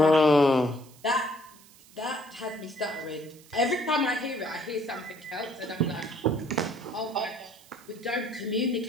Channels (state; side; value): noise; right; hiss, 24 dB below the sound